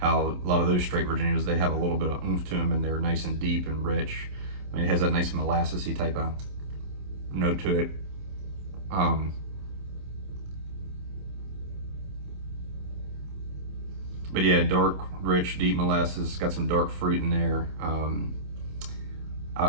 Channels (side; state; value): left; late; 27 ms